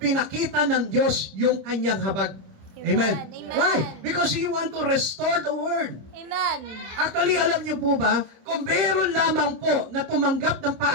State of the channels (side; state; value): left; late; 26 ms